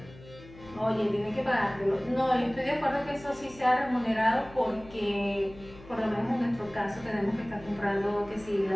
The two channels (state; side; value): noise; left; hum, 20 dB below the sound